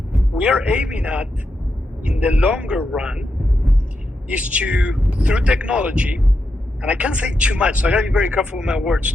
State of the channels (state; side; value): normal; both; correlation 0.85